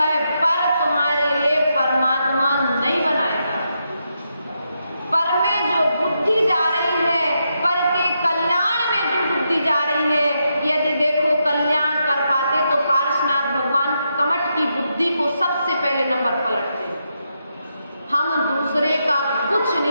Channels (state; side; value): inverted; both; correlation -0.83